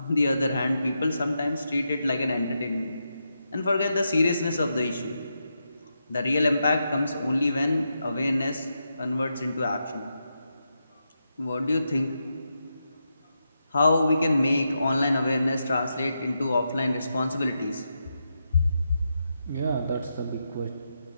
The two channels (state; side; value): inverted; both; correlation -0.85